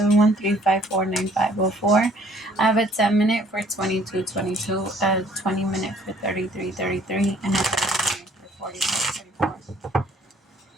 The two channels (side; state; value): both; normal; correlation 0.59